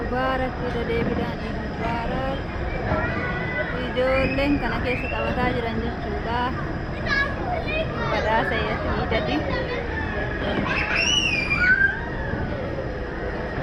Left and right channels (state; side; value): identical; both; correlation 1.00